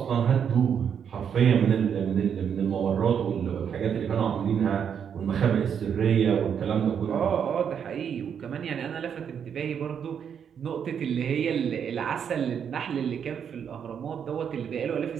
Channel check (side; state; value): left; quieter; 7.8 dB